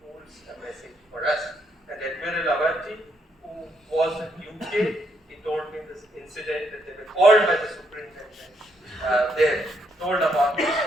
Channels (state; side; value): normal; both; correlation 0.74